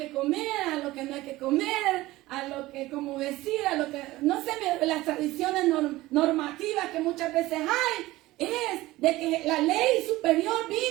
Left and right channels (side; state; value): left; quieter; 18.1 dB